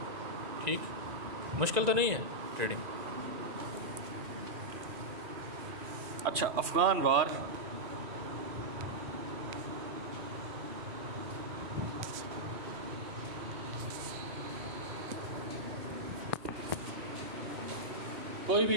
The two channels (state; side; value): late; left; 1.9 ms